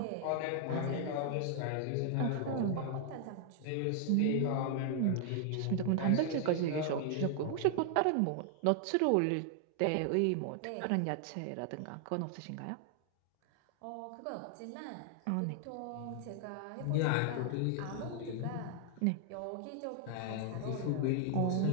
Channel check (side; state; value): both; different; correlation 0.00